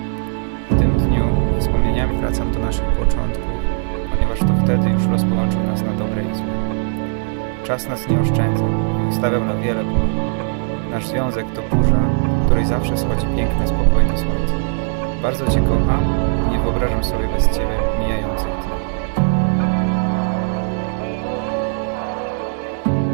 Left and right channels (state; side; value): silent; left; digital silence